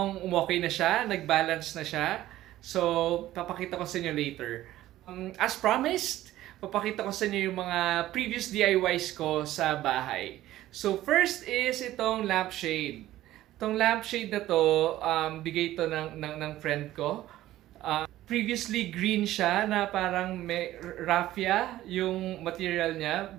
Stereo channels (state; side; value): quieter; left; 14.7 dB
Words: umokay na siya. Nag-balance na siya. So, papakita ko sa inyo later. As promised, papakita ko sa inyo yung mga previous DIYs ko sa bahay. So, first is itong lampshade. Itong lampshade na to, bigay ito ng friend ko. Previously green siya na parang may raffia yung material niya,